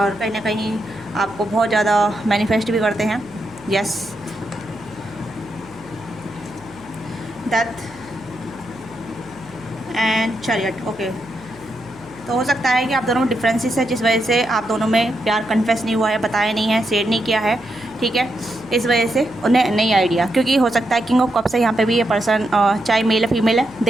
कहीं ना कहीं आपको बहुत ज़्यादा मैनिफेस्ट भी करते हैं। Yes, death and chariot. Okay, तो हो सकता है कि आप दोनों में डिफरेंसेस है, जिस वजह से आप दोनों में प्यार कन्फेस नहीं हुआ है, बताया नहीं है, शेयर नहीं किया है, ठीक है। इस वजह से उन्हें नहीं आइडिया, क्योंकि हो सकता है किंग ऑफ कप्स है यहाँ पे भी ये पर्सन, चाहे मेल है फीमेल है,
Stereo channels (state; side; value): noise; right; hum, 24 dB below the sound